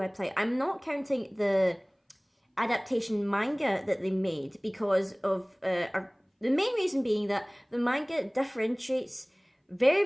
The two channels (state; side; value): identical; both; correlation 1.00